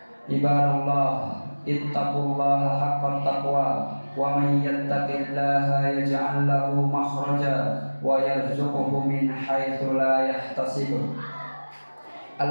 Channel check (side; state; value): both; inverted; correlation -1.00